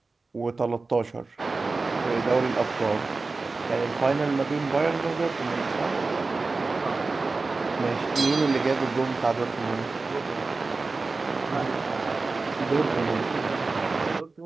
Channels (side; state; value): left; quieter; 3.8 dB